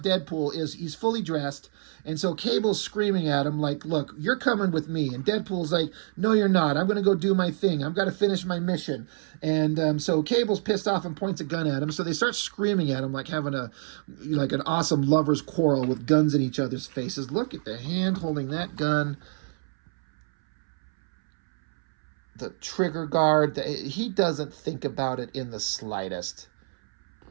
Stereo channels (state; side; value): silent; left; 60 dB below the other